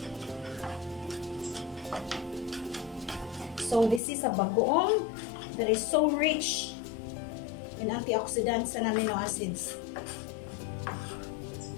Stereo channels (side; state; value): right; drops out; at 4.0 s